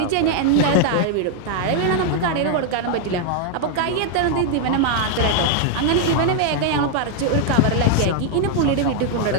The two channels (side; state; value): both; different; correlation 0.00